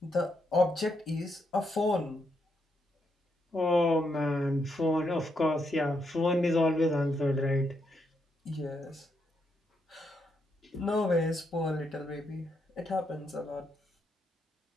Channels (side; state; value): both; normal; correlation 0.79